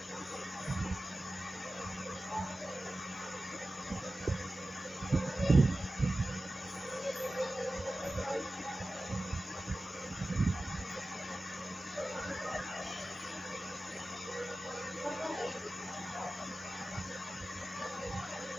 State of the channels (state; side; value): normal; both; correlation 0.95